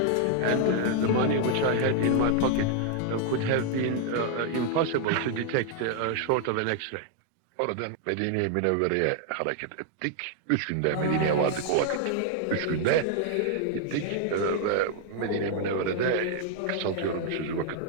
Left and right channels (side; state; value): both; different; correlation 0.00